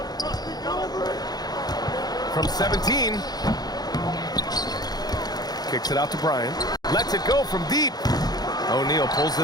From 17. Kicks it out to Bryant. Lets it go from deep. O'Neal pulls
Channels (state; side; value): late; right; 0.19 ms